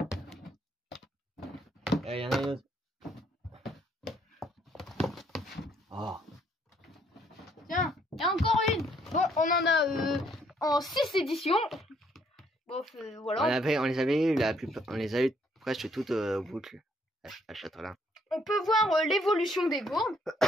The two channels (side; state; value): both; normal; correlation 0.67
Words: Il y en a d'autres. Oh, Tiens, il y a encore une. Bon, on en a en 6 éditions. Bon, voilà. on les avait eu on les a eu presque toutes boucles à Châtelain. On peut voir l'évolution des gourdes.